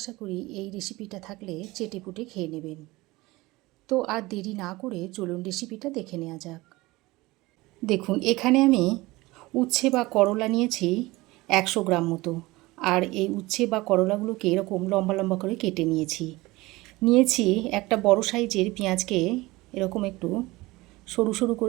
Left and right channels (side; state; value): left; quieter; 20.7 dB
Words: করি এই রেসিপিটা থাকলে চেটেপুটে খেয়ে নেবেন। তো আর দেরি না করে চলুন রেসিপিটা দেখে নেওয়া যাক। দেখুন, এখানে আমি উচ্ছে বা করলা নিয়েছি 100 গ্রাম মতো। আর এই উচ্ছে বা করলাগুলোকে এরকম লম্বা লম্বা করে কেটে নিয়েছি একটা বড় সাইজের পেঁয়াজকে এরকম একটু সরু সরু